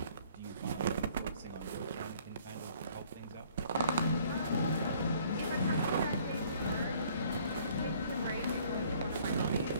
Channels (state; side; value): inverted; both; correlation -0.58